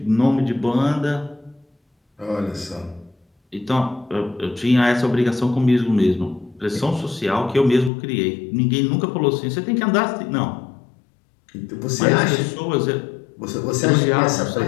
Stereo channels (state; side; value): drops out; right; at 7.9 s